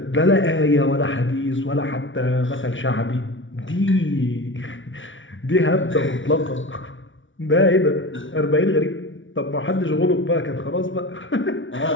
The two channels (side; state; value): right; late; 0.56 ms